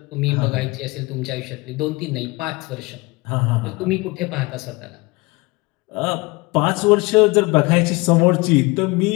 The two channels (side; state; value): right; quieter; 24.4 dB